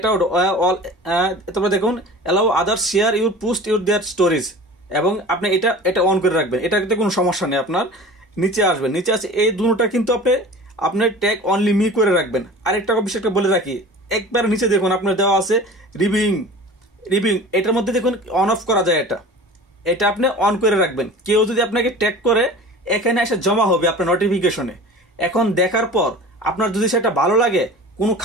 তারপর দেখুন allow others share your post your their stories, এবং আপনি এটা অন করে রাখবেন। এটাতে কোনো সমস্যা নেই। আপনার নিচে আসবেন, নিচে আছে এই দুটোটা কিন্তু আপনার ট্যাগ অনলি মি করে রাখবেন। আরেকটা বিষয়টা বলে রাখি, একবার নিচে দেখুন আপনার দেওয়া আছে রিভিউইং। এটার মধ্যে দেখুন অন অফ করা যায়, এটা আপনি অন করে রাখবেন। কেউ যদি আপনাকে ট্যাগ করে এখানে এসে জমা হবে আপনার নোটিফিকেশনে। এখন দেখার পর আপনার যদি সেটা ভালো লাগে, কোনো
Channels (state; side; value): normal; both; correlation 0.39